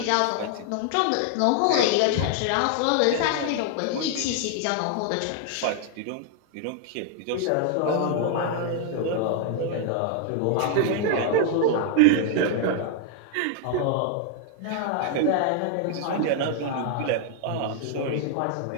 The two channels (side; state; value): both; different; correlation 0.00